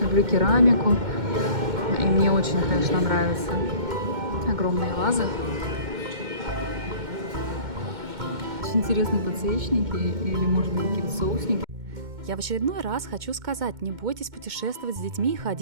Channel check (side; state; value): left; late; 2.1 ms